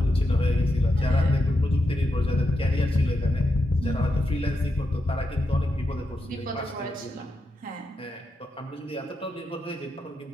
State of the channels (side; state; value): both; normal; correlation 0.86